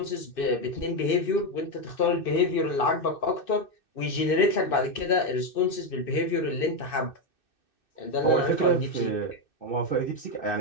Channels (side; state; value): right; late; 2.6 ms